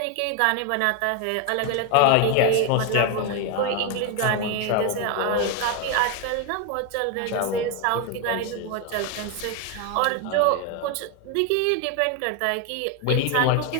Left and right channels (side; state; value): both; different; correlation 0.01